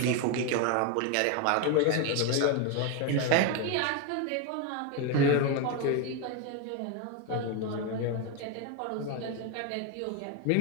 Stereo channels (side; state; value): both; different; correlation 0.02